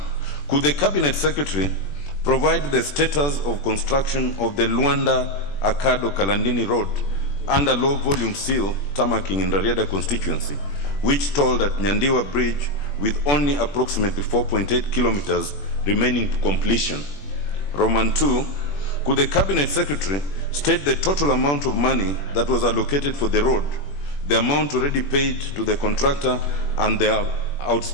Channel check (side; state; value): right; late; 21 ms